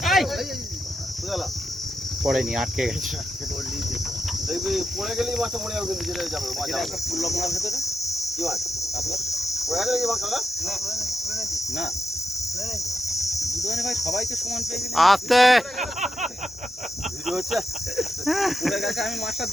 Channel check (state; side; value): normal; both; correlation 0.86